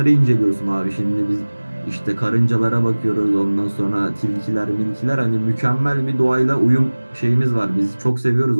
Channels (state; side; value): inverted; both; correlation -1.00